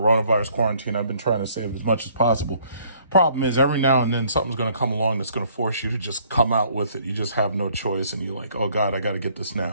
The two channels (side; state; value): both; inverted; correlation -0.61